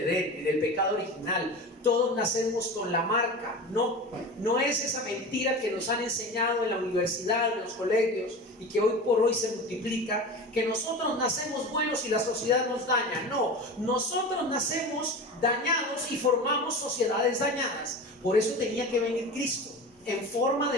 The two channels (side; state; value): both; normal; correlation 0.31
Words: en el pecado original. Todos nacemos con la marca. No es esa mentira que nos han enseñado en la universidad, en los colegios, y que hoy por hoy se multiplica, que nosotros nacemos buenos y la sociedad nos daña. No, nosotros nacemos dañados y formamos sociedades dañadas. Por eso tenía que venir Cristo en forma